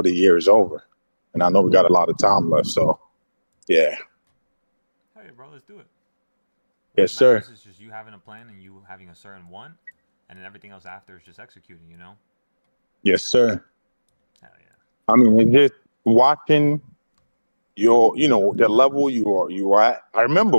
the year is over. And I know we got a lot of time left. So, yeah. Hey, bro, let's do it. Yes, What sir. matters is just you having a plan and you having a certain one, and then everything else after is just executing. You know. Yes, sir. Hell yeah. I mean, it's just watching the level you are at. I remember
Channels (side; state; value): both; inverted; correlation -1.00